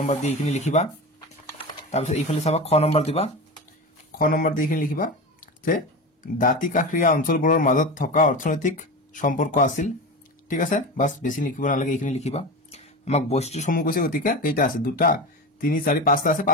দি এইখিনি লিখিবা তাৰপিছত এইফালে চাবা খ নম্বৰ দিবা খ নম্বৰ দি এইখিনি লিখিবা যে দাঁতি কাষৰীয়া অঞ্চলবোৰৰ মাজত থকা অৰ্থনৈতিক সম্পৰ্ক আছিল ঠিক আছে বাস বেছি লিখিব নালাগে এইখিনি লিখিবা আমাক বৈশিষ্ট্যসমূহ কৈছে গতিকে কেইটা আছে দুটা 3 4 5টা আছে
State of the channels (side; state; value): both; normal; correlation 0.25